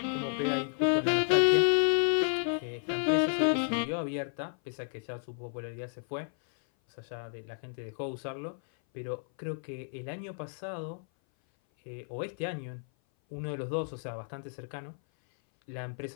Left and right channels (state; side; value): silent; right; 56 dB below the other